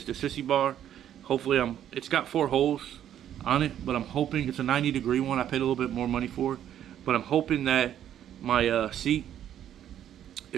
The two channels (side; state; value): left; quieter; 10.6 dB